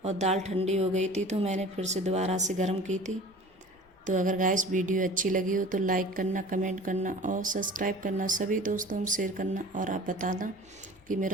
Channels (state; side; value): normal; both; correlation 0.42